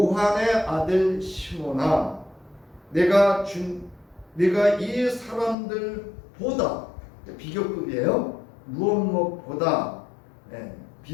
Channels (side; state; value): right; drops out; at 5.6 s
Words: 아들 시몬아, 내가 이 사람들보다, 비교급이에요. 무엇보다